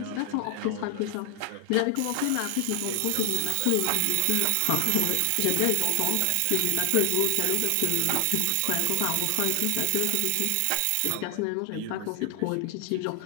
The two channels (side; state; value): both; different; correlation 0.00